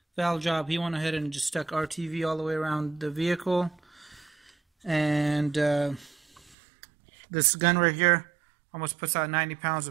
job, he went ahead and just stuck RTV all the way around the vehicle. And this gun right here almost puts out 90 pounds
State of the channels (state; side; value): drops out; left; at 6.6 s